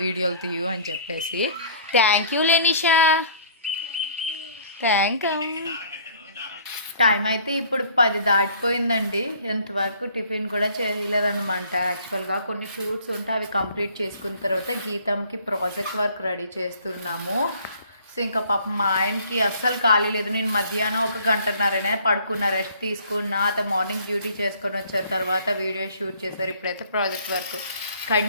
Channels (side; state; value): both; inverted; correlation -0.54